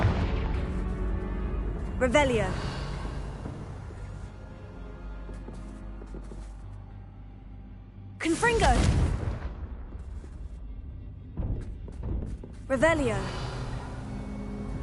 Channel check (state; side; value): identical; both; correlation 1.00